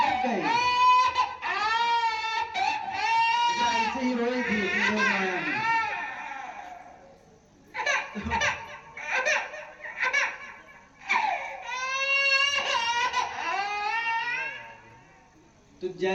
गए। ऐसे ही रोई थी योग माया ने। तो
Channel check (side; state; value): both; identical; correlation 1.00